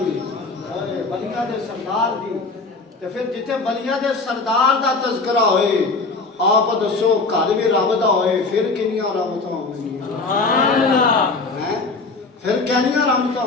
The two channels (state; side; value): quieter; right; 3.8 dB